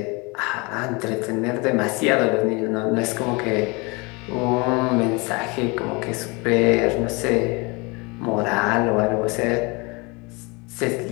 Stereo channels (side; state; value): right; quieter; 27.8 dB